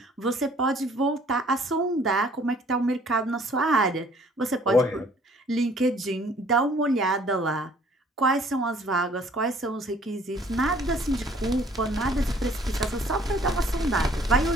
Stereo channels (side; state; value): both; normal; correlation 0.57